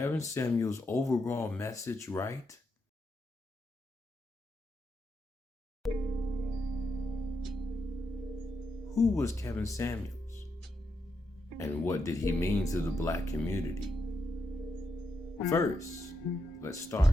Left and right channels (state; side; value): normal; both; correlation 0.82